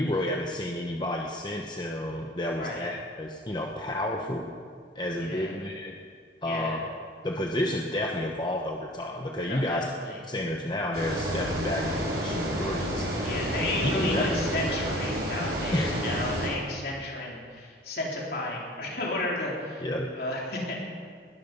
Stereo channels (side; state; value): both; normal; correlation 0.45